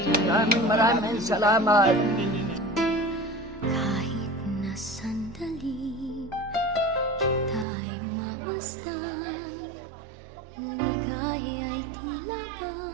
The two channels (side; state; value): left; drops out; at 7.7 s